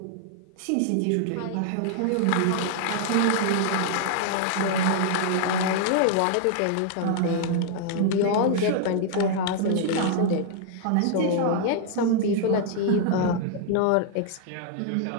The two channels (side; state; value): both; different; correlation -0.01